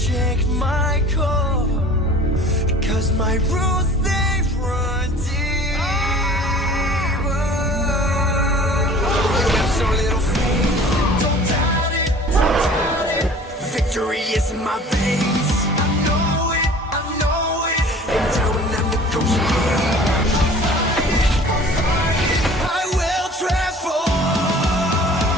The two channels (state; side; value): normal; both; correlation 0.46